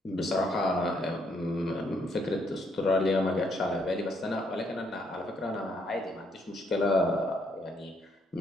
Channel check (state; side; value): normal; both; correlation 0.72